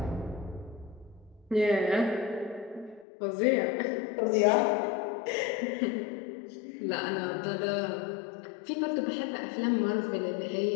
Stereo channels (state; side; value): drops out; right; at 3.1 s